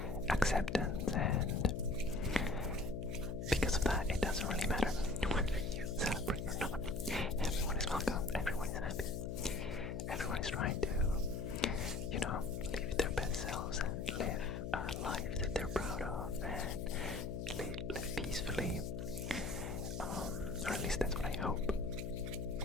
acceptance, and because of that, it doesn't really matter whether you celebrate or not. Everyone is welcome, everyone is happy, everyone is trying to, live their best selves and live a life that they're proud of and live peacefully, or at least that's what I hope.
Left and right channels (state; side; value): noise; left; hum, 4 dB below the sound